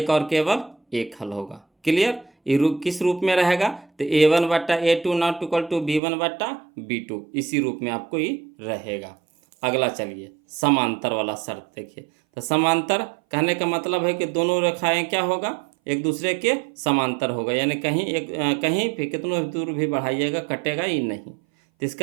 और केवल एक हल होगा। क्लियर। ये रूप किस रूप में रहेगा, तो A1/A2 not equal to B1/B2, इसी रूप में आपको ये रहेगा। अगला चलिए समांतर वाला शर्त देखिए। तो समांतर कहने का मतलब है कि दोनों रेखाएं क्या होगा, एक दूसरे के समांतर होगा, यानी कहीं भी कितनों दूर भी बढ़ाइएगा कटेगा ही नहीं। तो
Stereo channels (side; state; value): left; drops out; at 6.0 s